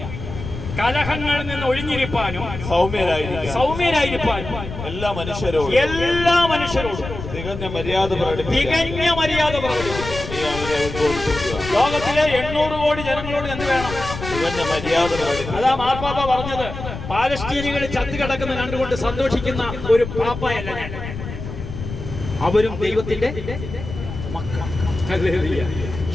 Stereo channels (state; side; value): noise; left; rumble, 9 dB below the sound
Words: കലഹങ്ങളിൽ നിന്ന് ഒഴിഞ്ഞിരിപ്പാനും സൗമ്യരായിരിക്കാനും എല്ലാ മനുഷ്യരോടും തികഞ്ഞ മര്യാദ പ്രകടിപ്പിക്കുക. ലോകത്തിലെ 800 കോടി ജനങ്ങളോട് എന്ത് വേണം? തികഞ്ഞ മര്യാദ. അതാ മാർപ്പാപ്പ പറഞ്ഞത്, പാലസ്തീനികൾ ചത്തുകിടക്കുന്ന കണ്ടുകൊണ്ട് സന്തോഷിക്കുന്ന ഒരു പാപ്പയല്ല ഞാൻ. അവരും ദൈവത്തിന്റെ മക്കൾ.